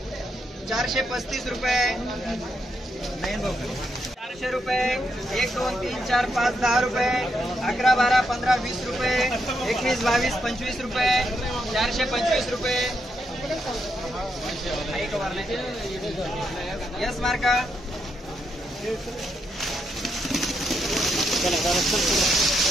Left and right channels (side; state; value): both; normal; correlation 0.80